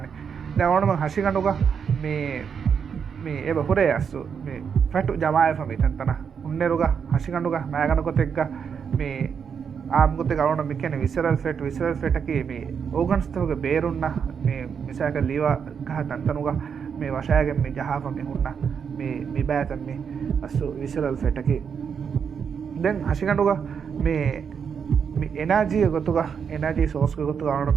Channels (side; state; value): left; quieter; 6.9 dB